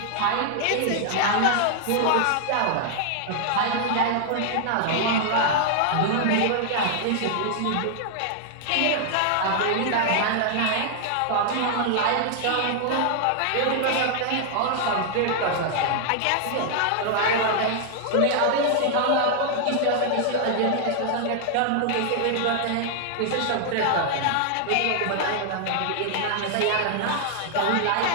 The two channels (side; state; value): both; different; correlation 0.00